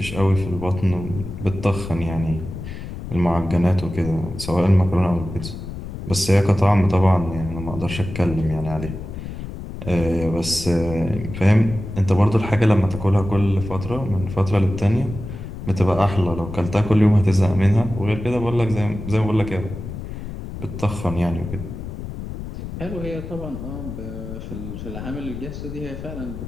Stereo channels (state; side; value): noise; left; rumble, 9 dB below the sound